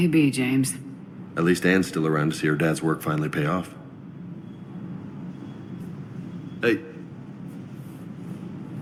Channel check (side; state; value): both; identical; correlation 1.00